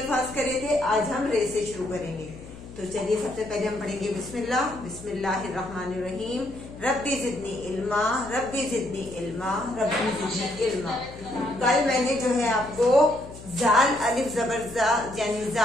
करे थे, आज हम रे से शुरू करेंगे। तो चलिए सबसे पहले हम पढ़ेंगे बिस्मिल्लाह। बिस्मिल्लाहिर्रहमानिर्रहीम। रब्बी जिदनी इल्मा, रब्बी जिदनी इल्मा, रब्बी जिदनी इल्मा। कल मैंने जो है आपको जाल अलिफ जबर जा यानी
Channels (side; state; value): left; noise; hum, 16 dB below the sound